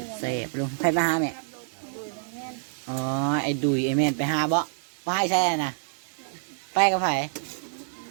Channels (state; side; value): silent; left; digital silence